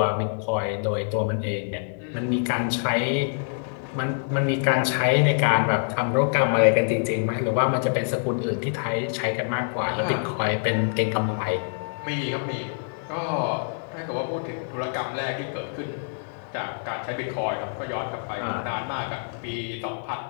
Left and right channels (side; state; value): right; silent; digital silence